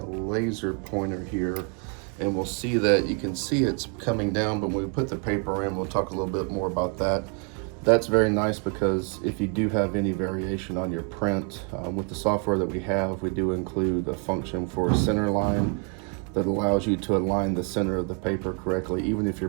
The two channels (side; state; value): left; quieter; 38.9 dB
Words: laser pointer here, and we'll see that you can see it's coming down, but when we put the paper in, we'll talk a little bit more about that. That's very nice because if you do have any variation on your print, with the software that we have, we do include a function for a center line that allows you to align the center of the paper correctly. Even if your